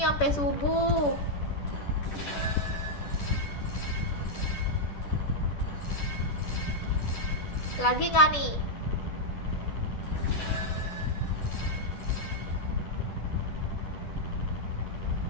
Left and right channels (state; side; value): late; right; 10 ms